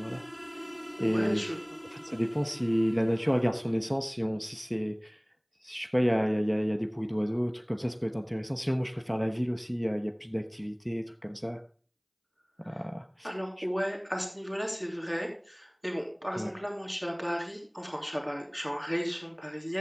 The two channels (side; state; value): both; identical; correlation 1.00